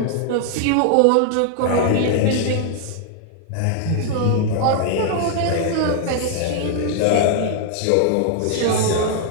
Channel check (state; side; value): different; both; correlation 0.00